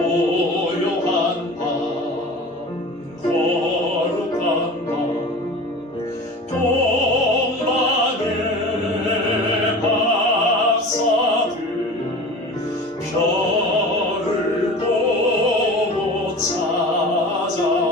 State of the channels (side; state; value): both; normal; correlation 0.37